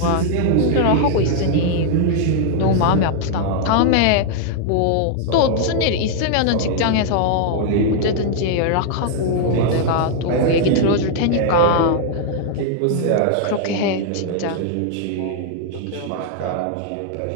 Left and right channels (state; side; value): different; both; correlation 0.00